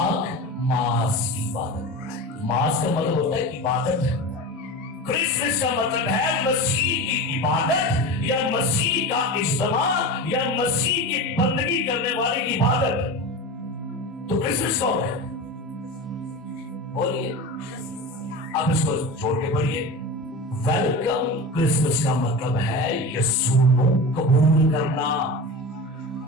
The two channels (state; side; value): normal; both; correlation 0.28